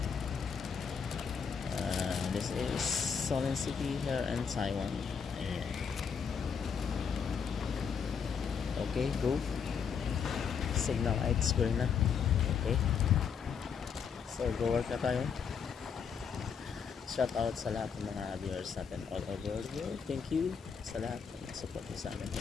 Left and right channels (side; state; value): right; quieter; 6.6 dB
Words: This is Solin City here in Taiwan. Ayan. Okay, go. Signal lights green na. Okay. So go work na tayo. Shout out sa lahat ng mga viewers natin all over the world. Thank you sa lahat ng support sa amin